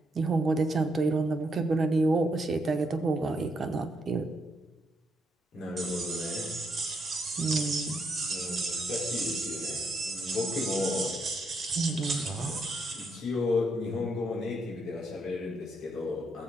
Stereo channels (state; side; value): normal; both; correlation 0.77